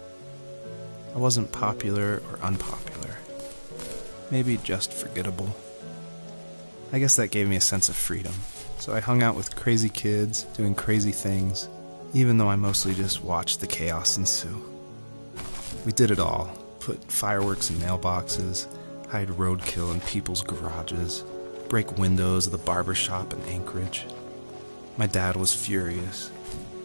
I wasn't popular or unpopular. Maybe just forgettable. I guess that gave me a sense of freedom. So I hung out with crazy kids, doing crazy things, even though I mostly just watched the chaos ensue. We did it all. Put fireworks in mailboxes, hide roadkill in people's garages, break windows of the barber shop in Anchorage. My dad was furious,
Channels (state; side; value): inverted; both; correlation -1.00